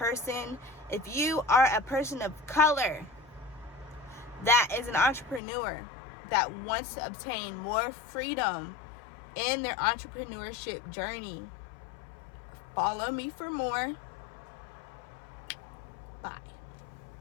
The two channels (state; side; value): drops out; right; at 5.4 s